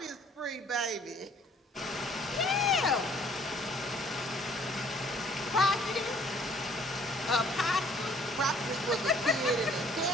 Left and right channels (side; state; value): both; normal; correlation 0.58